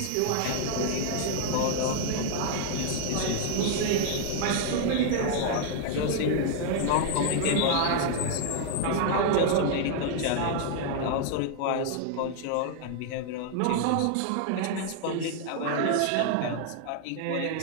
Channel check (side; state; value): both; different; correlation 0.00